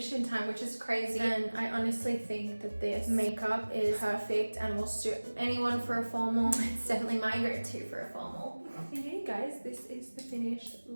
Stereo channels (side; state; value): both; inverted; correlation -1.00